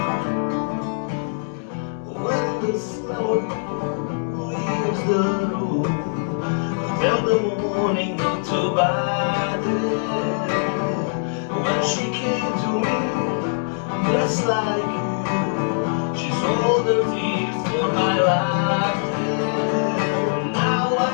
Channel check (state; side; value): silent; right; digital silence